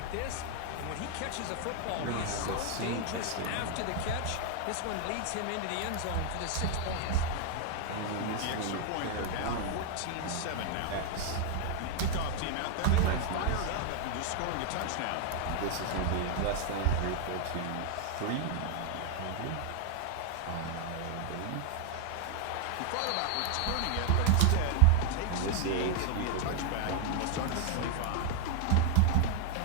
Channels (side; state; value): both; different; correlation 0.00